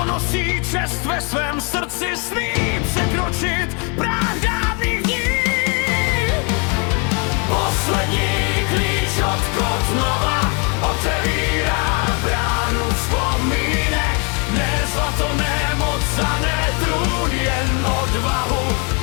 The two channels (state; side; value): quieter; right; 34.6 dB